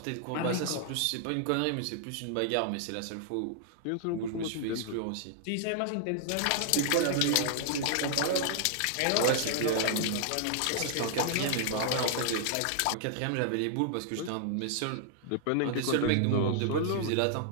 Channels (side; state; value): both; different; correlation -0.01